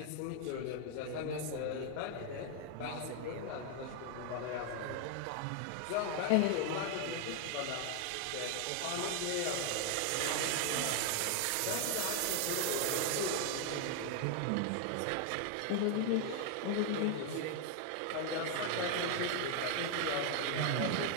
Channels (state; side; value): different; both; correlation 0.00